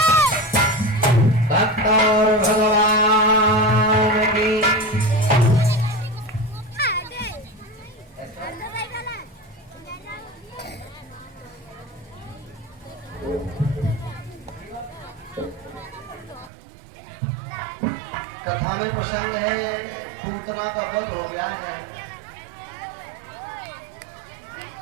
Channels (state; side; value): drops out; left; at 16.5 s